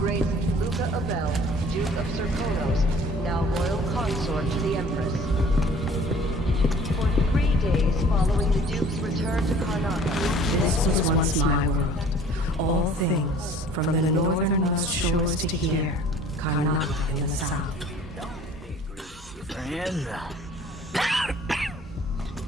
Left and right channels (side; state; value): both; normal; correlation 0.51